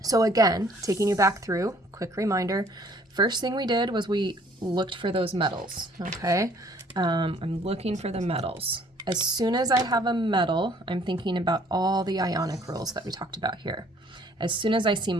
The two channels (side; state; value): both; normal; correlation 0.59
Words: So again, taking you back through, quick reminder, first thing we did was we looked for those metals, okay? I'm looking for the metals. As soon as I have a metal, I'm thinking about all the ionic rules that we talked about here. As soon as I see